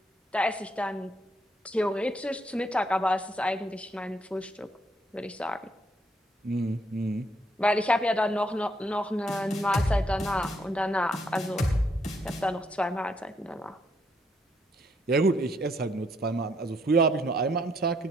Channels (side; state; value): both; normal; correlation 0.72